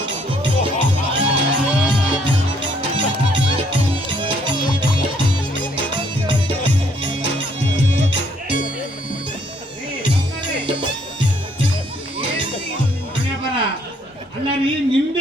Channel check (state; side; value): normal; both; correlation 0.66